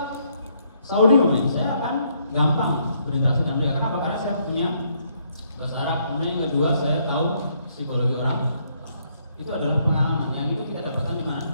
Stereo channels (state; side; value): inverted; both; correlation -0.71